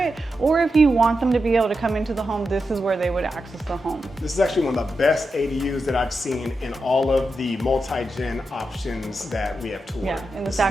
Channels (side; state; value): both; normal; correlation 0.88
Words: or if you want them to be able to come into the home, this is where they would access the home. This is actually one of the best ADUs that I've seen in all of the multi-gen options that we have toured. Yeah, in the